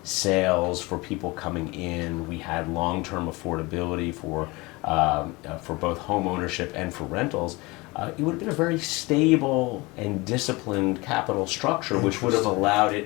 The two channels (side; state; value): right; quieter; 23.8 dB